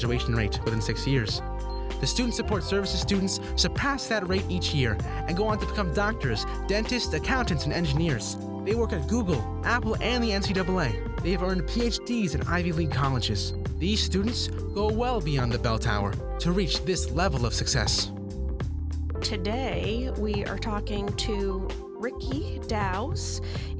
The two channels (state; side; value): identical; both; correlation 1.00